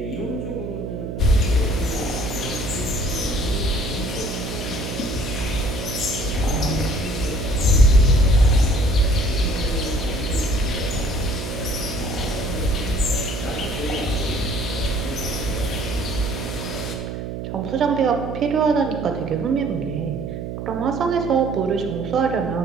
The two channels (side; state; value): right; noise; hum, 6 dB below the sound